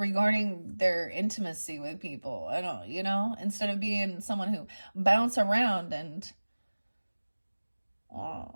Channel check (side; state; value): both; inverted; correlation -1.00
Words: their intimacy with people. I don't, instead of being someone who bounce around and